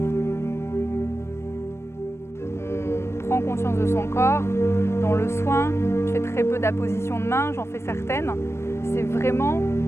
On prend conscience de son corps. Dans le soin, je fais très peu d'appositions de main, j'en fais certaines. C'est vraiment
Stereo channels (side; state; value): right; late; 0.13 ms